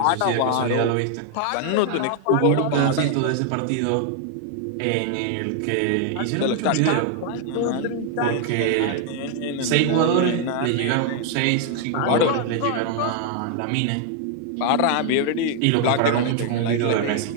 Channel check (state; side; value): different; both; correlation 0.00